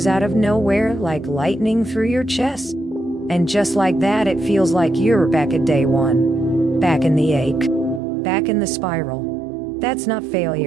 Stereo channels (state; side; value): drops out; left; at 8.0 s